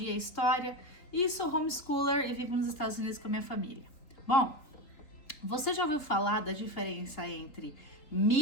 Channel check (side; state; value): right; late; 3.8 ms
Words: e história e sou homeschooler e vivo nos Estados Unidos com a minha família. Bom, você já ouviu falar da diferença entre